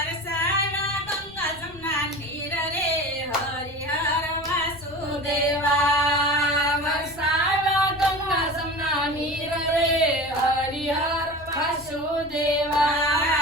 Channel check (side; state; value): left; noise; rumble, 23 dB below the sound